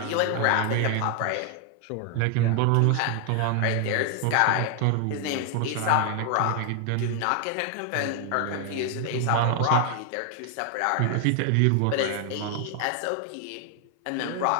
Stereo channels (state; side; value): different; both; correlation 0.00